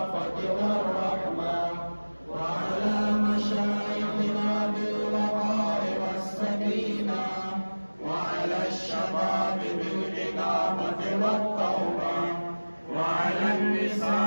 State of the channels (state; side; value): inverted; both; correlation -1.00